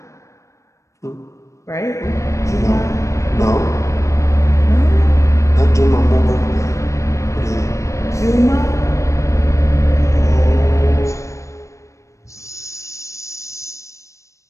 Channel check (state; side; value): late; right; 0.15 ms